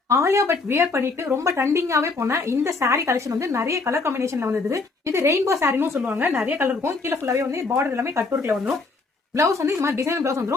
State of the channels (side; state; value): right; quieter; 3.9 dB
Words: ஆலியா பட் வியர் பண்ணிட்டு ரொம்ப ட்ரெண்டிங்காவே போன இந்த சாரி கலெக்ஷன் வந்து நிறைய கலர் காம்பினேஷன்ல வந்தது. இது ரெயின்போ சாரின்னு சொல்லுவாங்க. நிறைய கலர் இருக்கும். கீழே ஃபுல்லாவே வந்து பார்டர் எல்லாமே கட் ஒர்க்ல வந்துடும். பிளவுஸ் வந்து இந்த மாதிரி டிசைன் பிளவுஸ்